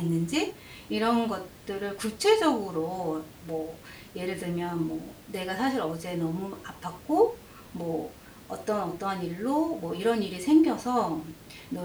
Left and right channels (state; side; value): identical; both; correlation 1.00